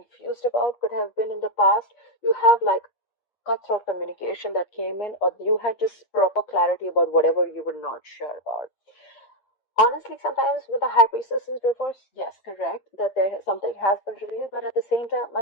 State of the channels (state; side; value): late; right; 8.6 ms